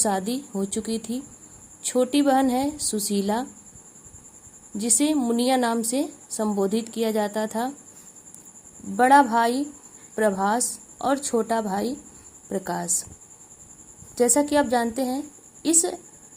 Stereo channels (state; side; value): identical; both; correlation 1.00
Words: हो चुकी थी। छोटी बहन है सुशीला, जिसे मुनिया नाम से संबोधित किया जाता था। बड़ा भाई प्रभास और छोटा भाई प्रकाश। जैसा कि आप जानते हैं, इस